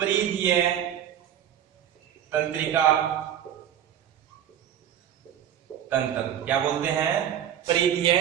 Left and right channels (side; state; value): left; quieter; 10.1 dB